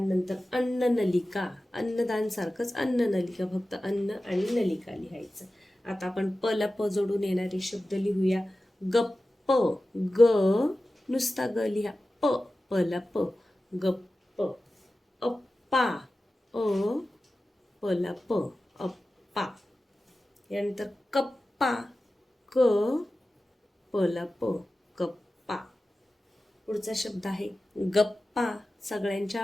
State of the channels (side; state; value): both; normal; correlation 0.95